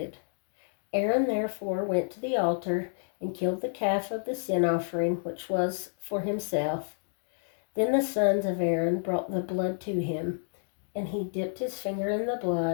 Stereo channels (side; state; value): right; silent; digital silence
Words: Aaron therefore went to the altar and killed the calf of the sin offering, which was for himself. Then the sons of Aaron brought the blood to him, and he dipped his finger in the